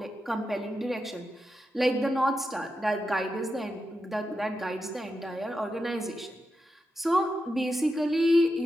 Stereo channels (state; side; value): normal; both; correlation 0.88